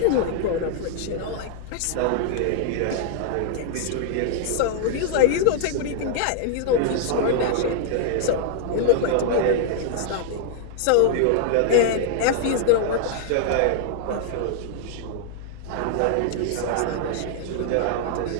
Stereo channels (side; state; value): both; different; correlation -0.01